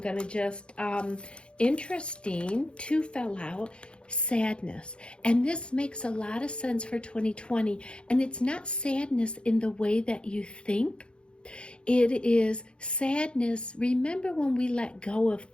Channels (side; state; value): right; late; 0.056 ms